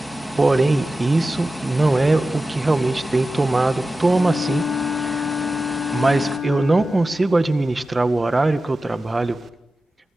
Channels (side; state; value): both; normal; correlation 0.94